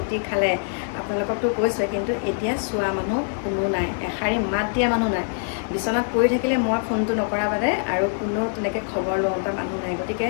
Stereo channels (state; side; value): silent; right; digital silence